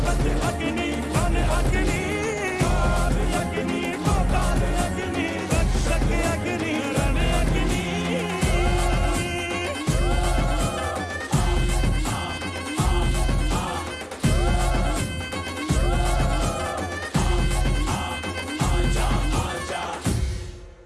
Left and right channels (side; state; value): both; identical; correlation 1.00